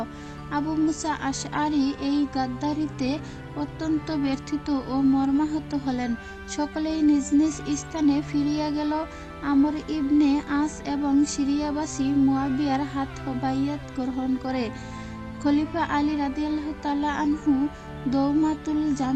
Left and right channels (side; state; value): both; identical; correlation 1.00